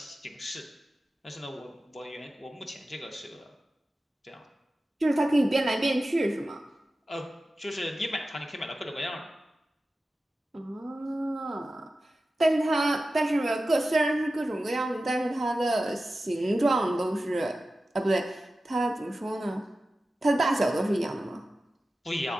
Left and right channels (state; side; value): normal; both; correlation 0.94